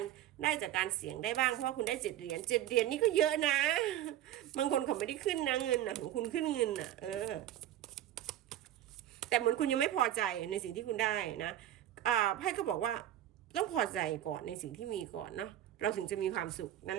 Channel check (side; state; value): left; quieter; 12.2 dB